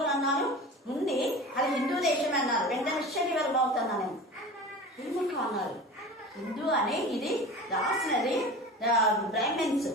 అన్నారు ఉంది, అది హిందూ దేశమే అన్నారు. వెంటనే శరీరం అవుతున్నా నేను ఎందుకు అన్నారు, హిందూ అని ఇది రాసినది బ్రాహ్మణ్స్,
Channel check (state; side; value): normal; both; correlation 0.35